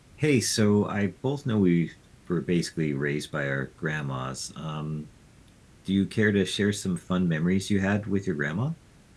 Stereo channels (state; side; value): identical; both; correlation 1.00